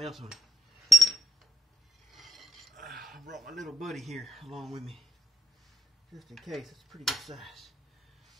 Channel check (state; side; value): normal; both; correlation 0.79